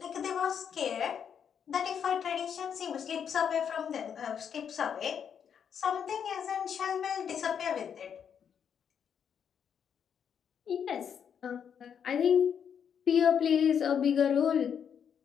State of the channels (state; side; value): quieter; right; 7.8 dB